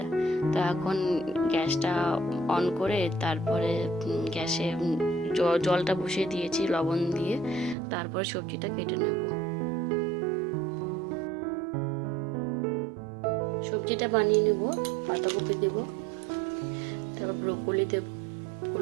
তো এখন গ্যাসটা অন করে তারপরে গ্যাসে জলটা বসিয়ে দিয়েছি লবণ দিয়ে। তারপরে সবজিটা কেটে নেব। সবজিটা বানিয়ে নেব। পাতাকপি দেব, তারপর ব্রোকলি দেব,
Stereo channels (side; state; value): left; drops out; at 7.8 s